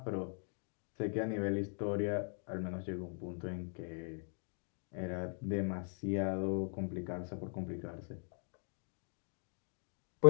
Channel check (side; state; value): right; silent; 52 dB below the other